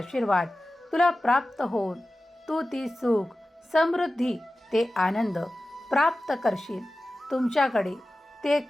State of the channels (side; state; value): both; normal; correlation 0.95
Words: तुला प्राप्त होऊन तू ती सुख, समृद्धी, ते आनंद प्राप्त करशील. तुमच्याकडे ते